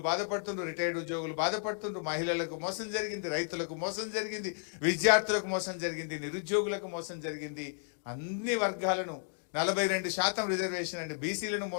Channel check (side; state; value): right; silent; digital silence